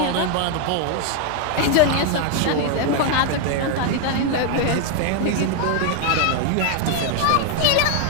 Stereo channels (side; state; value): both; different; correlation 0.01